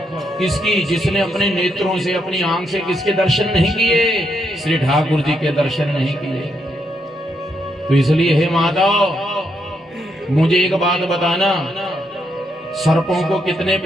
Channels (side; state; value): both; normal; correlation 0.78